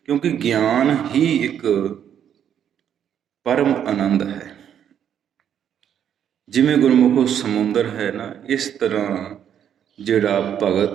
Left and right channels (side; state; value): left; quieter; 9.2 dB